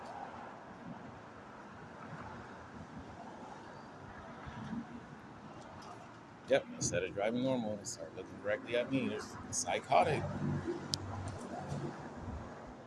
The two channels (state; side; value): identical; both; correlation 1.00